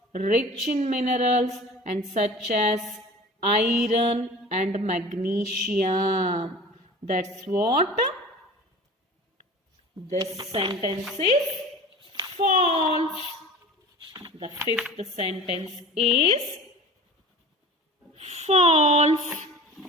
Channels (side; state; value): both; normal; correlation 0.39